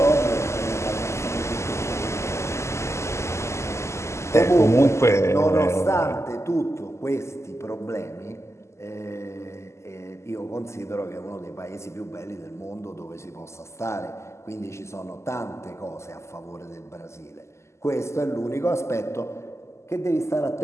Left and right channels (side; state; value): right; late; 0.13 ms